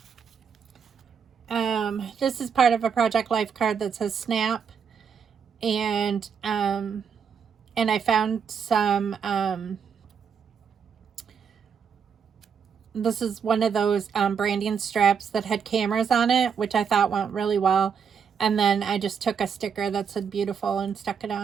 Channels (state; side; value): quieter; left; 6.8 dB